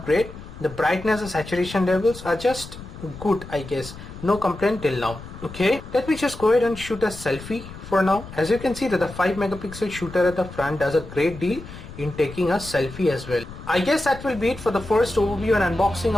great. The brightness and saturation levels are just good, I guess. No complaint till now. Okay, let me just go ahead and shoot a selfie for now. As you can see that the 5 megapixel shooter at the front does a great deal in taking a selfie as well. I guess that will be it for the first overview and unboxing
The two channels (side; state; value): left; noise; rumble, 14 dB below the sound